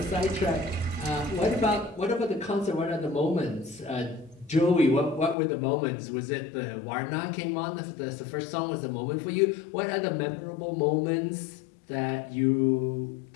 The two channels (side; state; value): right; drops out; at 5.4 s